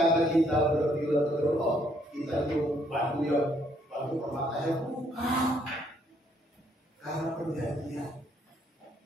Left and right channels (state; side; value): normal; both; correlation 0.68